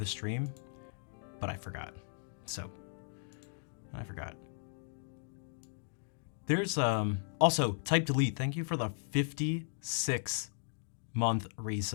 stream, but I forgot. So I forgot. There's also type delete. Thank you for the 56-month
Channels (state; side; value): silent; right; digital silence